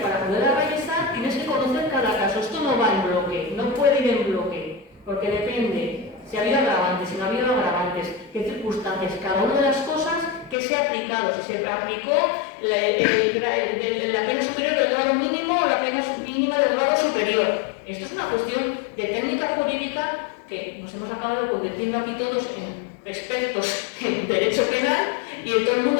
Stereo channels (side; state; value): right; drops out; at 10.6 s